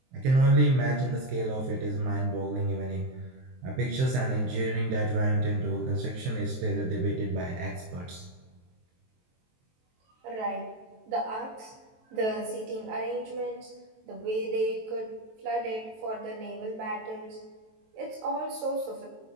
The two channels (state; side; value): late; left; 23 ms